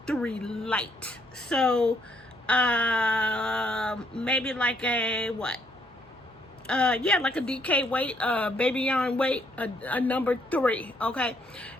3 light. So, maybe like a what? Yeah, like a DK weight, baby yarn weight, a number 3, okay?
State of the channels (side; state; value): both; normal; correlation 0.70